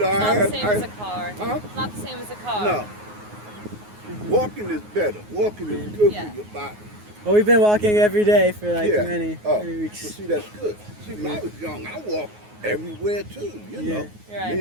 I not had, the same as a car. Huh? It's not the same as a car. No. Walking is better. Walking is good Yeah. for your body. Well, we've been walking every day for like Yeah. many But weeks. see, that's good. See, when I was young, I walked everywhere too, you Yeah. know. Right. Me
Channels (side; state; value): left; late; 9.5 ms